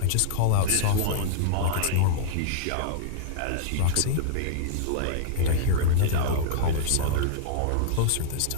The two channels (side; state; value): both; different; correlation -0.01